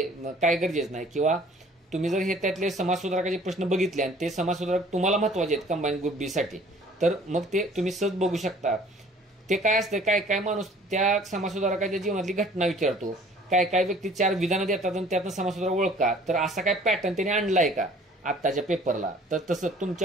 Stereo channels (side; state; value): both; normal; correlation 0.53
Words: काय गरजेचं नाही. किंवा तुम्ही जर हे त्यातले समाजसुधारकाचे प्रश्न बघितले आणि ते समाजसुधारक तुम्हाला महत्वाचे आहेत कंबाईन ग्रुप बी साठी, तर मग ते तुम्ही सहज बघू शकता. ते काय असतं, काय काय माणूस त्या समाजसुधारकाच्या जीवनातली घटना विचारतो, काय काय व्यक्ती 4 विधानं देतात आणि त्यातनं समाजसुधारक ओळखा. तर असा काय पॅटर्न त्याने आणलाय का आत्ताच्या पेपरला? तर तसं